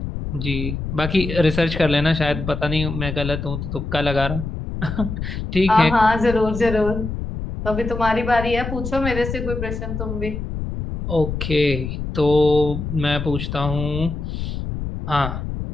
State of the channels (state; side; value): noise; left; rumble, 5 dB below the sound